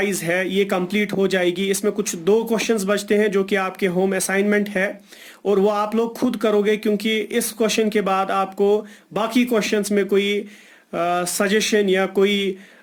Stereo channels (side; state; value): both; identical; correlation 1.00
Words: है ये कंप्लीट हो जाएगी। इसमें कुछ दो क्वेश्चंस बचते हैं जो कि आपके होम असाइनमेंट है, और वो आप लोग खुद करोगे, क्योंकि इस क्वेश्चन के बाद आपको बाकी क्वेश्चंस में कोई सजेशन या कोई